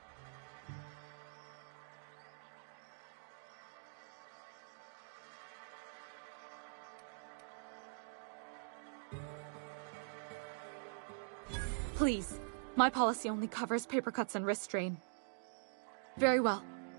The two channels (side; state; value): left; silent; digital silence